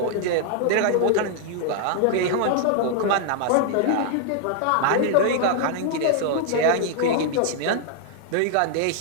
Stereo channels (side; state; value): both; different; correlation 0.00